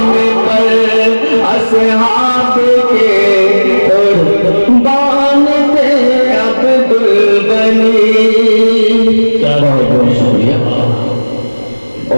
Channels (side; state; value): both; inverted; correlation -1.00